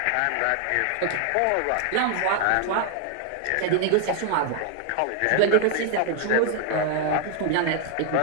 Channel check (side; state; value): both; different; correlation 0.00